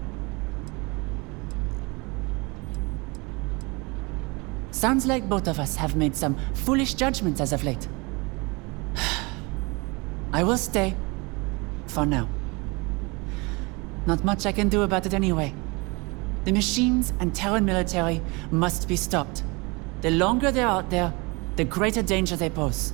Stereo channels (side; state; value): left; quieter; 27.1 dB